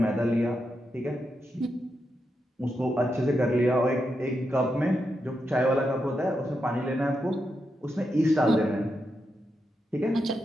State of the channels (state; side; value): normal; both; correlation 0.85